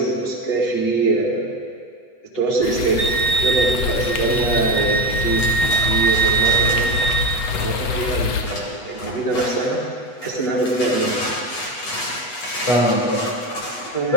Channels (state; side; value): late; right; 8.1 ms